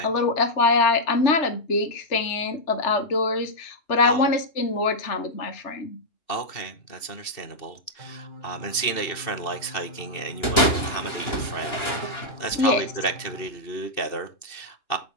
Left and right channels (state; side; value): late; right; 2.9 ms